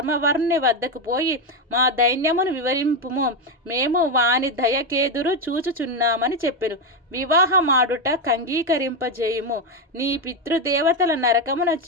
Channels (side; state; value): both; normal; correlation 0.08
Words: వద్దకు పోయి మా దైన్యమును వివరింపుము. మేము వాని దయకేదురు చూచుచున్నామని చెప్పెను. వివాహమాడుట కంగీకరింపజేయుము. నీ పితృదేవతల నరకమున